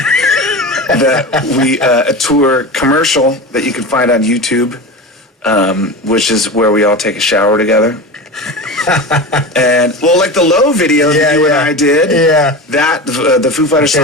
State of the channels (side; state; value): both; normal; correlation 0.27